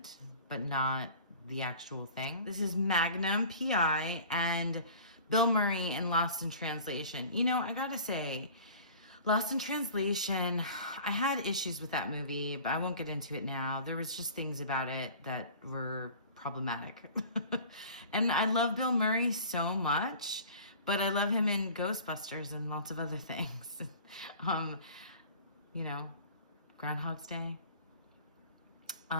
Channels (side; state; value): both; inverted; correlation -0.43